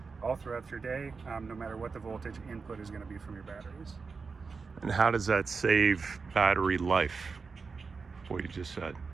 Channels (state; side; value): quieter; left; 4.8 dB